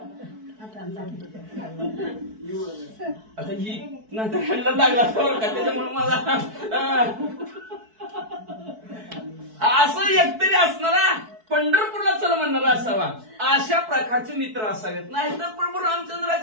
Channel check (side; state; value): left; late; 4.6 ms